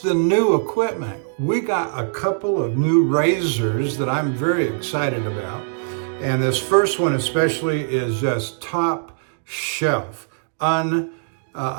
the new equipment. We got a couple of new razors that I'm very excited about. And this first one especially is just top shelf.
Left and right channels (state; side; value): silent; left; digital silence